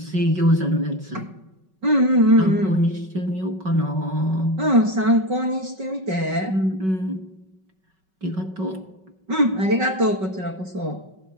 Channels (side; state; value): left; late; 5.3 ms